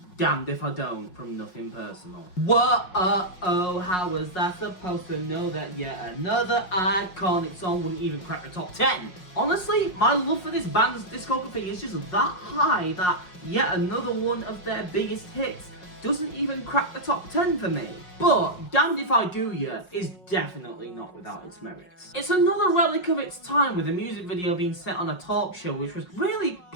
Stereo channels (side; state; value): right; late; 5.5 ms